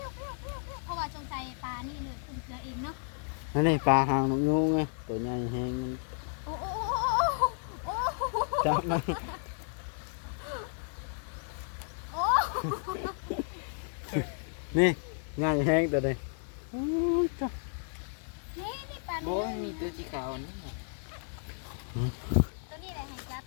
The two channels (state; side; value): silent; right; 56 dB below the other